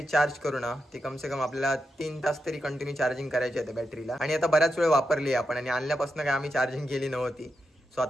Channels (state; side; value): normal; both; correlation 0.86